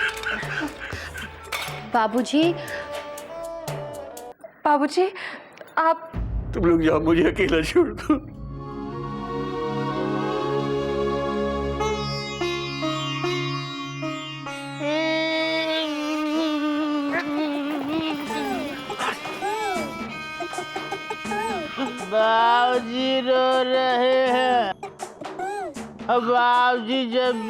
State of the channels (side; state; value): both; identical; correlation 1.00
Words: बाबूजी, बाबूजी आप तुम लोग जाओ, मुझे अकेला छोड़ दो। बाबूजी रो रहे हैं। बाबूजी जब